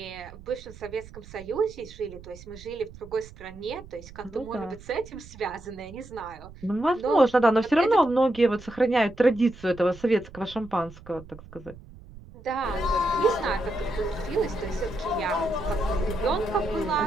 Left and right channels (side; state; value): right; noise; rumble, 18 dB below the sound